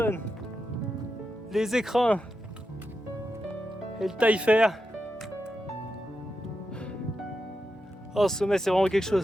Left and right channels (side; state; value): both; normal; correlation 0.87